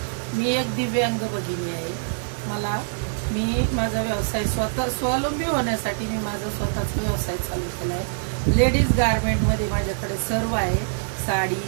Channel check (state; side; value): silent; left; digital silence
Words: मी एक दिव्यांग भगिनी आहे. मी माझा व्यवसाय स्वावलंबी होण्यासाठी मी माझा स्वतःचा व्यवसाय चालू केला आहे. लेडीज गारमेंटमध्ये माझ्याकडे सर्व आहे. साडी,